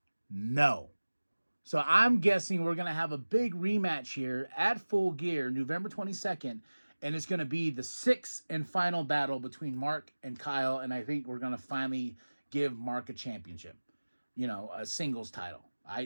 no. So I'm guessing we're going to have a big rematch here at Full Gear, November 22nd. And it's going to be the 6th and final battle between Mark and Kyle. And I think we're going to finally give Mark a championship. You know, a singles title.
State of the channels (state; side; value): inverted; both; correlation -1.00